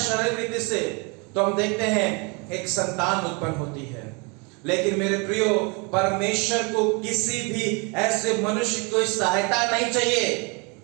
शारीरिक रीति से, तो हम देखते हैं एक संतान उत्पन्न होती है। लेकिन मेरे प्रियो, परमेश्वर को किसी भी ऐसे मनुष्य को सहायता नहीं चाहिए,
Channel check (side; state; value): left; quieter; 31.0 dB